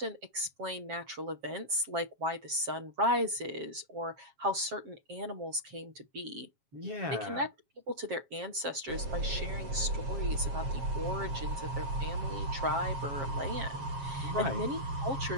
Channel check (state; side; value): late; left; 7.4 ms